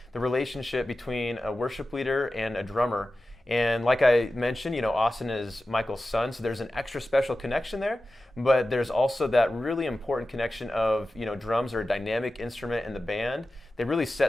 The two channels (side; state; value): both; normal; correlation 0.94